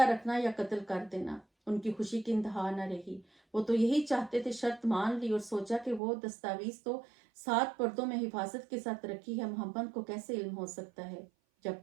رکھنا یا قتل کر دینا۔ ان کی خوشی کی انتہا نہ رہی، وہ تو یہی چاہتے تھے، شرط مان لی اور سوچا کہ وہ دستاویز تو 7 پردوں میں حفاظت کے ساتھ رکھی ہے، محمد کو کیسے علم ہو سکتا ہے۔ جب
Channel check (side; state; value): left; drops out; at 6.0 s